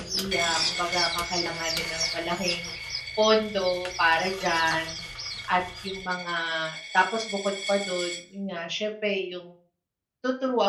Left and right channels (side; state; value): both; identical; correlation 1.00